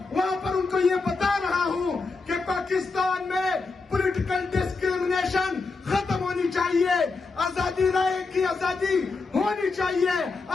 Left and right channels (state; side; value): quieter; right; 4.1 dB